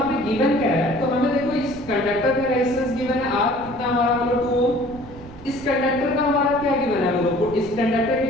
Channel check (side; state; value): right; noise; rumble, 16 dB below the sound